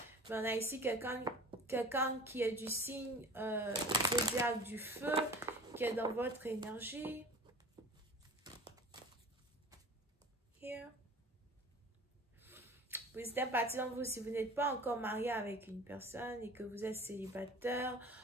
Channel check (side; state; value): both; normal; correlation 0.41